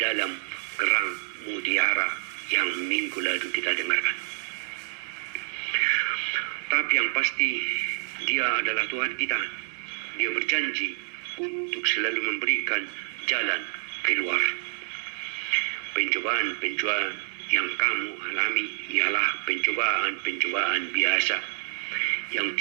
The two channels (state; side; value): silent; left; 60 dB below the other